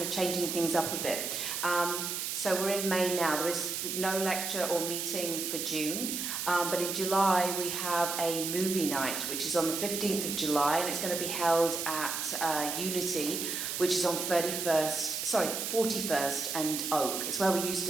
of changing things up a bit. So we're in May now. There is no lecture or meeting for June, but in July we have a movie night, which is on the 15th of July, and it's going to be held at Unity, which is on 41st and Oak. It's where we used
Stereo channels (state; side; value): noise; right; hiss, 3 dB below the sound